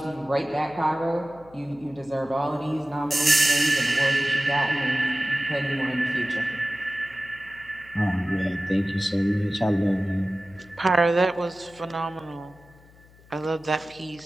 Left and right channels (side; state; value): left; noise; hum, 26 dB below the sound